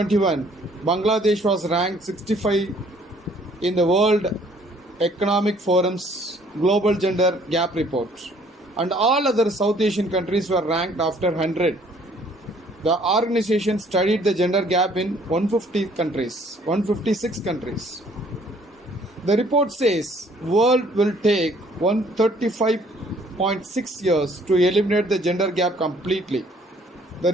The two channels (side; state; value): both; normal; correlation 0.60